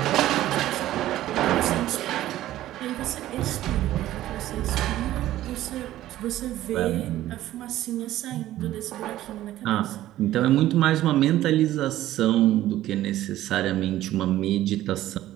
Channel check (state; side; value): quieter; left; 14.2 dB